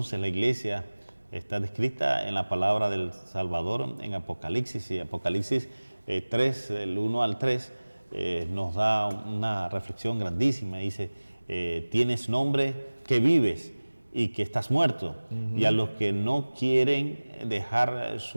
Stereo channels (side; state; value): both; inverted; correlation -1.00